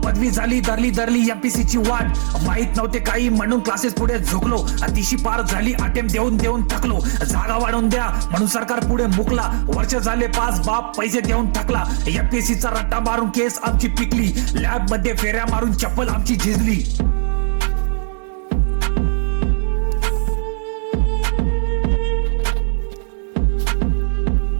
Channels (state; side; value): silent; left; digital silence